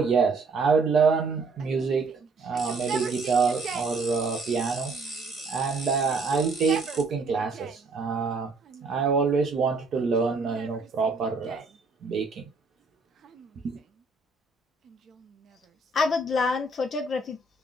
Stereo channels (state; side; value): quieter; left; 3.8 dB